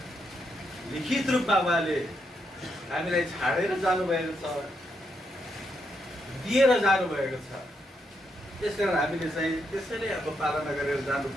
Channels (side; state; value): both; normal; correlation 0.80